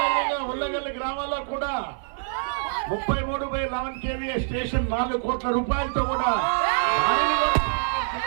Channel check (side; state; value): left; silent; 61 dB below the other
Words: ఉల్లగల్లి గ్రామాల్లో కూడా 33/11 kVA స్టేషన్ 4 కోట్ల రూపాయలతో కూడా